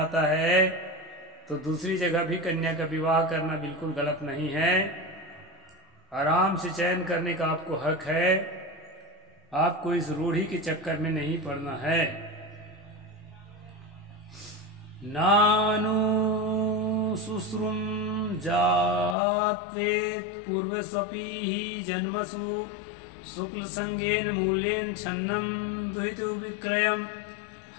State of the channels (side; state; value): right; drops out; at 19.2 s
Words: है, तो दूसरी जगह भी कन्या का विवाह करना बिल्कुल गलत नहीं है। आराम से चयन करने का आपको हक है, आपको इस रूढ़ी के चक्कर में नहीं पड़ना है। नानु शुश्रुम जात्वेत पूर्वस्वपि ही जन्मसु शुक्ल संगेन मूल्येन छन्नम द्वितीय विक्रयम।